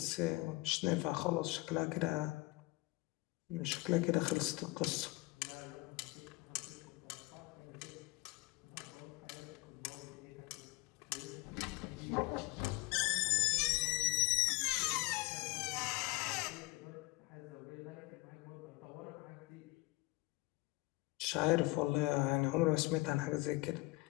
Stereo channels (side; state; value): right; quieter; 21.8 dB